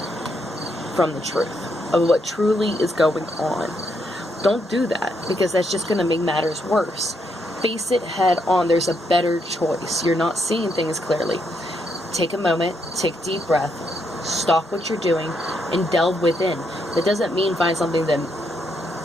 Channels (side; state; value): both; normal; correlation 0.77